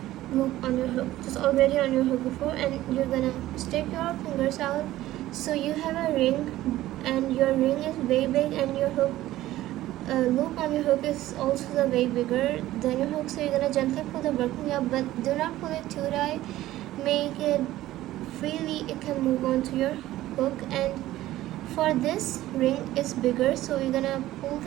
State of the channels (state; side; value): quieter; left; 15.2 dB